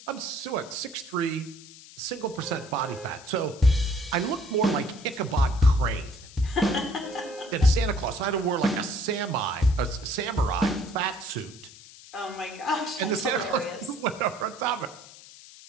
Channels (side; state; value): left; noise; hiss, 19 dB below the sound